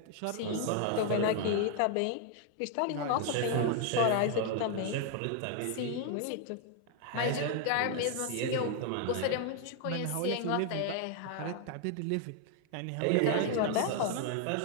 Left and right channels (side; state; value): both; different; correlation 0.00